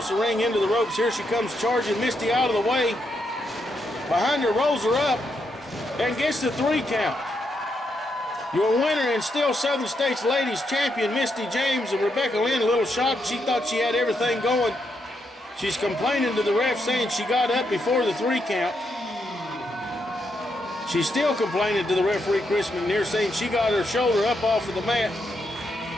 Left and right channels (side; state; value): both; normal; correlation 0.80